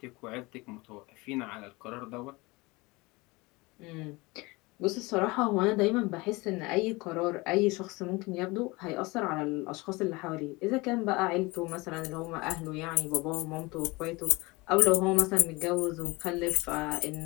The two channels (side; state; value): right; quieter; 23.7 dB